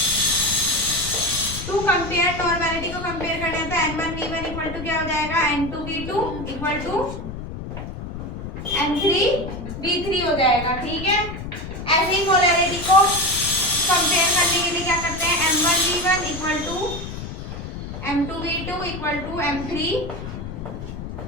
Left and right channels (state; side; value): noise; left; rumble, 8 dB below the sound